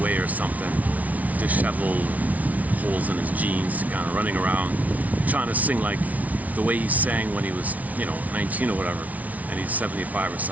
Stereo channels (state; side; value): late; left; 0.071 ms